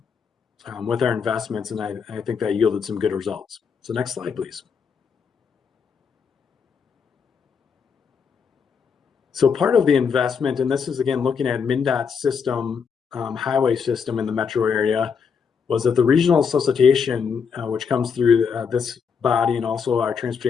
our investments, and I think that yielded some good results. So next slide, please. So part of the investment, and this is again looking at MnDOT's system, highway system in the metro area, was that the regional solicitation, which comes through this body and also our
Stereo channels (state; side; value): quieter; right; 6.3 dB